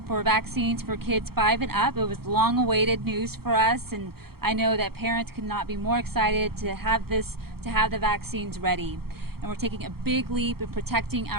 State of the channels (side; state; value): left; late; 0.95 ms